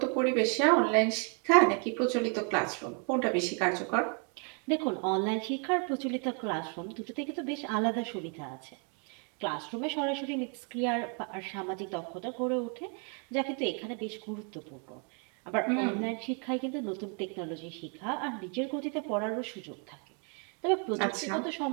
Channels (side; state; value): left; quieter; 38.7 dB